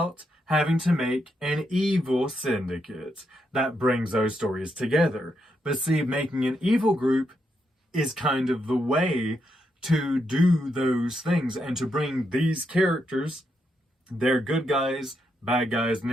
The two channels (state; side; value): normal; both; correlation 0.81